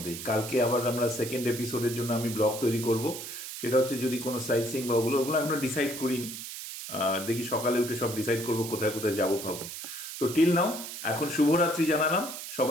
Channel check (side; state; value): right; noise; hiss, 9 dB below the sound